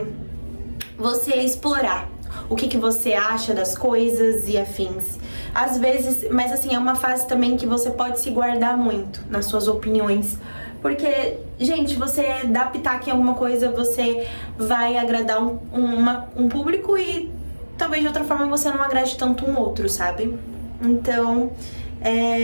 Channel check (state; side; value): inverted; both; correlation -1.00